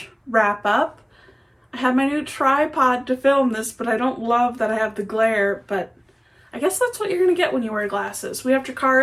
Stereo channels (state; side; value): identical; both; correlation 1.00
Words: wrap up. I have my new tripod to film this, but I don't love that I have the glare, but I guess that's what you're gonna get when you wear glasses. We have